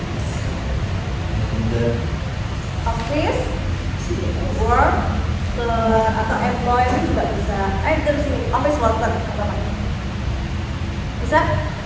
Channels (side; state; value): both; identical; correlation 1.00